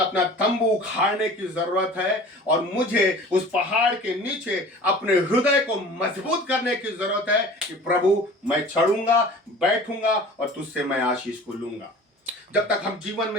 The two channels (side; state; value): both; normal; correlation 0.42